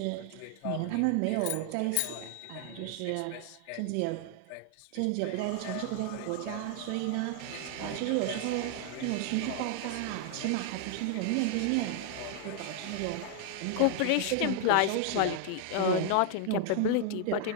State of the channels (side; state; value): both; different; correlation 0.00